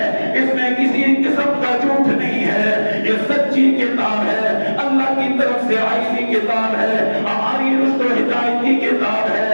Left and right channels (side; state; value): both; inverted; correlation -1.00